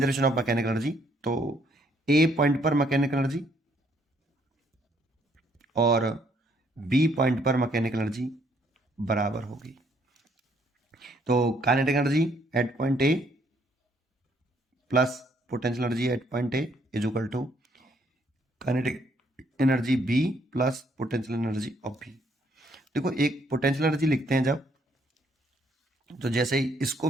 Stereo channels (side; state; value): both; normal; correlation 0.68